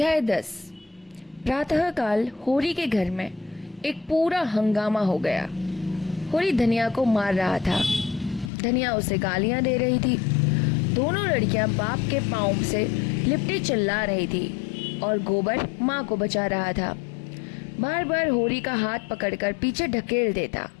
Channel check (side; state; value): right; drops out; at 8.5 s